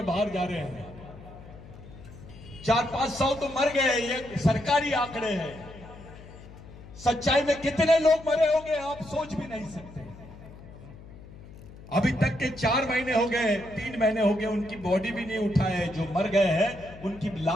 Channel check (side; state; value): left; noise; hum, 17 dB below the sound